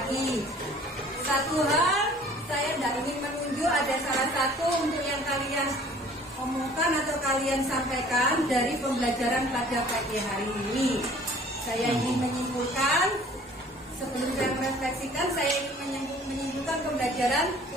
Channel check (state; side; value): normal; both; correlation 0.52